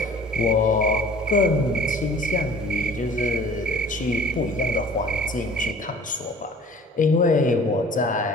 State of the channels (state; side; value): normal; both; correlation 0.48